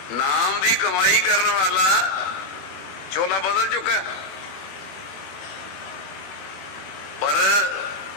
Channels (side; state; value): right; late; 21 ms